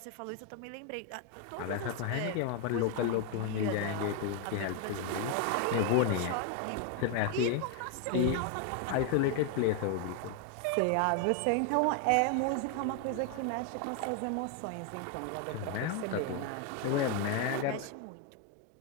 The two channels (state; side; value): different; both; correlation 0.01